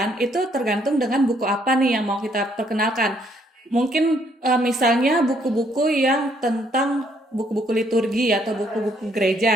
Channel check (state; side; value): normal; both; correlation 0.68